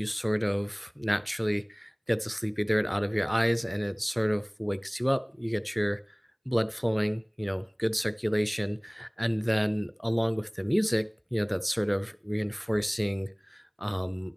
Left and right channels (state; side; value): identical; both; correlation 1.00